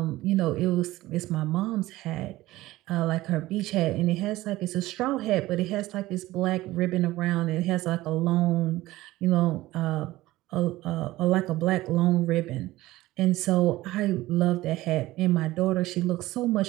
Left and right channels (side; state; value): left; quieter; 17.5 dB